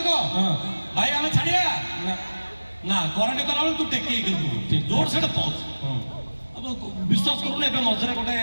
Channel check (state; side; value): inverted; both; correlation -1.00